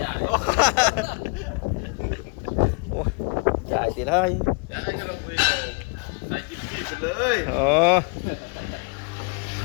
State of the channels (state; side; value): quieter; right; 34.8 dB